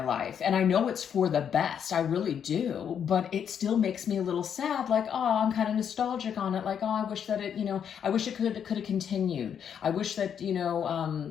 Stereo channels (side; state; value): right; quieter; 8.2 dB